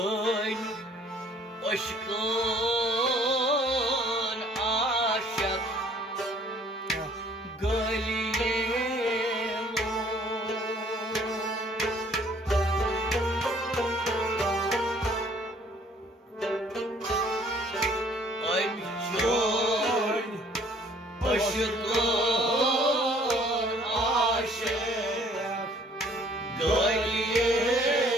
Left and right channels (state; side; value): normal; both; correlation 0.58